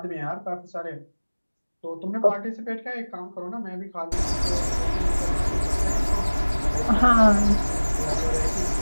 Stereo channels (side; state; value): both; inverted; correlation -1.00